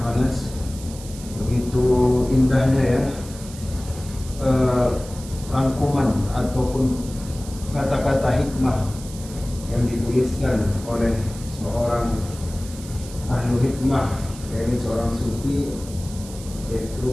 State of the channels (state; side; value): noise; right; hiss, 16 dB below the sound